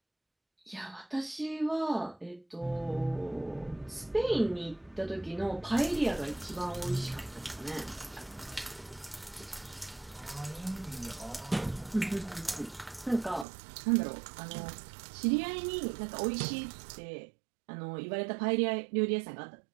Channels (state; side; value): drops out; left; at 13.5 s